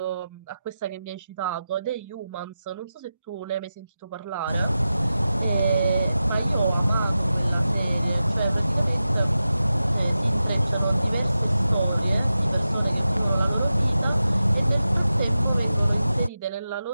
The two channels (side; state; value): both; inverted; correlation -0.92